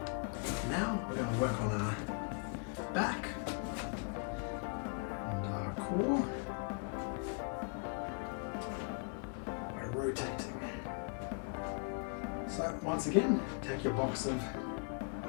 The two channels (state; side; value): quieter; right; 38.0 dB